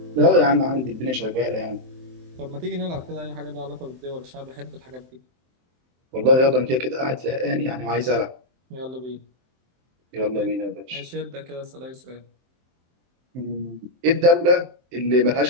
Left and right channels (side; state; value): left; late; 23 ms